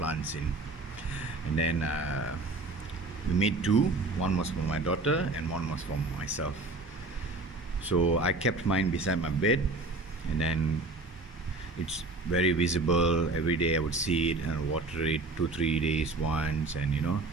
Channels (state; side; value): quieter; left; 3.1 dB